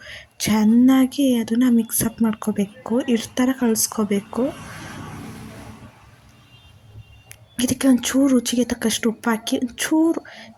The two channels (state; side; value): identical; both; correlation 1.00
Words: ಚೆನ್ನಾಗಿ ಅದನ್ನು ಮಿಕ್ಸಪ್ ಮಾಡ್ಕೋಬೇಕು, ಹಿಟ್ಟು ಥರ ಕಲಿಸ್ಕೋಬೇಕು. ಇದಕ್ಕೆ ಒಂಚೂರು ರುಚಿಗೆ ತಕ್ಕಷ್ಟು ಉಪ್ಪು ಹಾಕಿ ಒಂಚೂರು